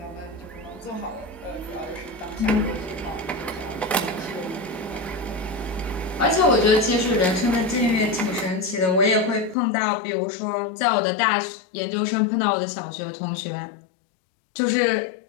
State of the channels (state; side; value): drops out; right; at 9.6 s